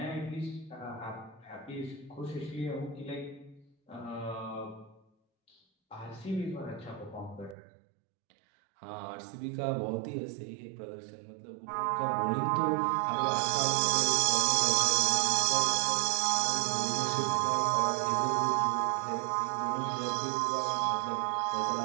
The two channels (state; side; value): drops out; left; at 7.6 s